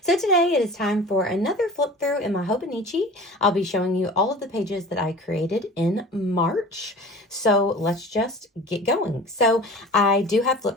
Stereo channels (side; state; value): both; normal; correlation 0.40